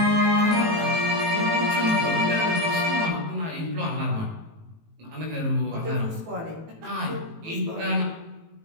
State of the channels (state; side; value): late; left; 18 ms